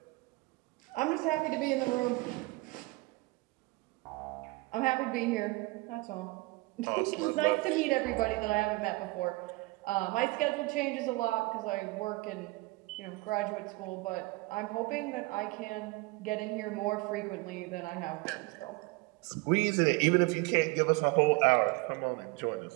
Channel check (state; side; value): quieter; left; 23.7 dB